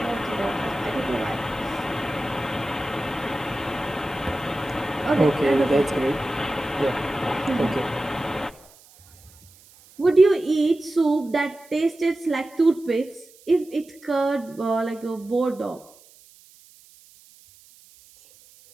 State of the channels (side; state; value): right; noise; hiss, 26 dB below the sound